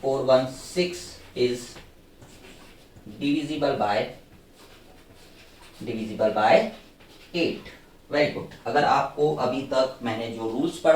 is divisible by 8। Very good. अगर आपको अभी तक मैंने जो रूल्स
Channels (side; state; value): both; identical; correlation 1.00